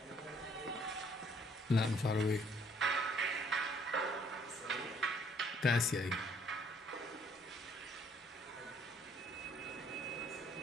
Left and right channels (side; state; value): both; normal; correlation 0.63